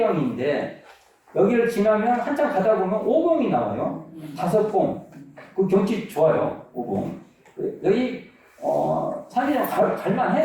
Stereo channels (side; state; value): both; identical; correlation 1.00